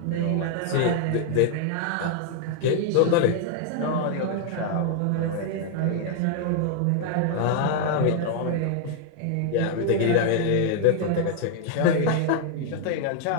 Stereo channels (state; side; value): different; both; correlation 0.00